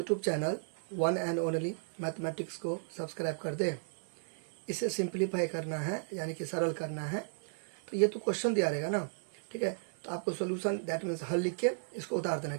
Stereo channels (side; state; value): left; silent; digital silence